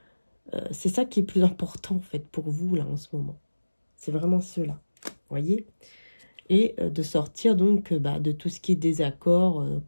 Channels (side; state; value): both; inverted; correlation -1.00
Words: c'est ça qui est plus important, en fait, pour vous, là, en ce moment. C'est vraiment cela, vous voyez. Et de sortir, donc, de tout ce qui est désaccord,